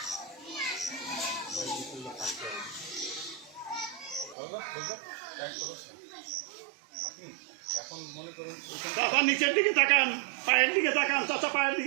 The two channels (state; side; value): drops out; left; at 4.4 s